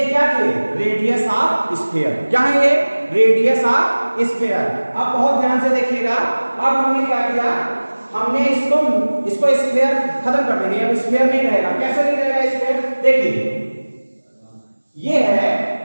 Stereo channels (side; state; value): both; inverted; correlation -1.00